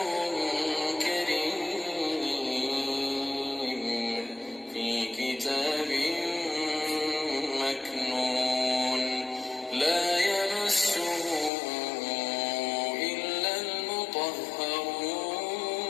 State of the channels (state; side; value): drops out; right; at 11.5 s